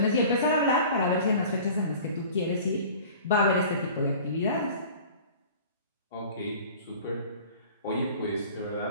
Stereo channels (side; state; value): both; inverted; correlation -0.43